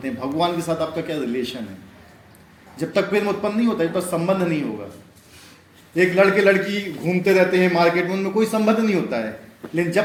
हैं। भगवान के साथ आपका क्या रिलेशन है? जब तक प्रेम उत्पन्न नहीं होता, जब तक संबंध नहीं होगा। एक लड़के लड़की घूमते रहते हैं मार्केट में, उनमें कोई संबंध नहीं होता है, लेकिन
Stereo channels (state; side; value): identical; both; correlation 1.00